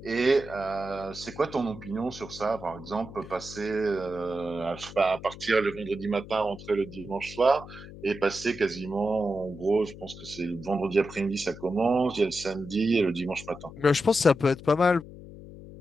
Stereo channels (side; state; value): left; noise; hum, 15 dB below the sound